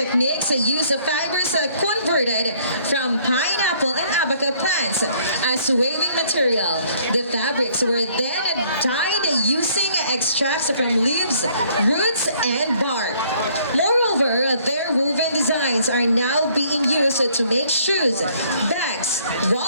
use fibers converted from pineapple and abaca plants as waving material. The fabrics were then dyed using extracts from leaves, roots, and bark. Moreover, their woven designs are now being used to make shoes, bags,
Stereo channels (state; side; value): inverted; both; correlation -0.61